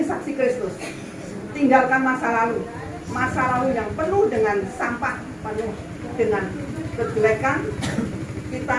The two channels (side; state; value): both; identical; correlation 1.00